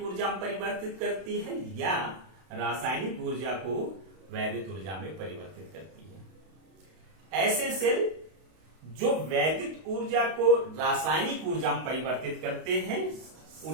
ऊर्जा में परिवर्तित करती है या रासायनिक ऊर्जा को वैद्युत ऊर्जा में परिवर्तित करती है। ऐसे सेल जो वैद्युत ऊर्जा को रासायनिक ऊर्जा में परिवर्तित करते हैं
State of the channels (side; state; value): left; late; 32 ms